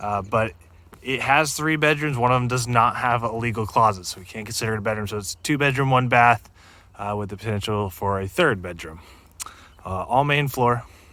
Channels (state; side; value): identical; both; correlation 1.00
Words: it has 3 bedrooms. One of them does not have a legal closet, so we can't consider it a bedroom. So it's 2 bedroom, 1 bath, with the potential for a 3rd bedroom. All main floor.